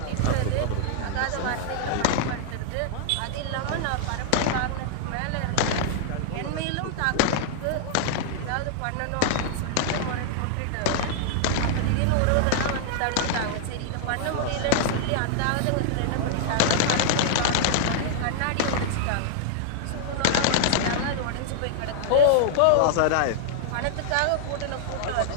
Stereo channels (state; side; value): different; both; correlation -0.01